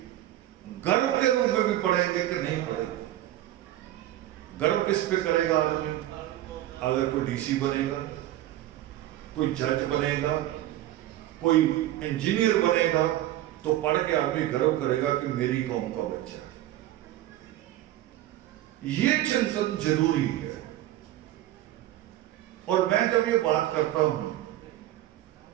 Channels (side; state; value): left; quieter; 14.1 dB